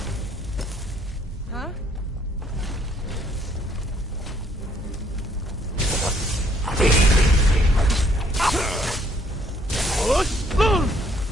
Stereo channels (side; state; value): both; normal; correlation 0.65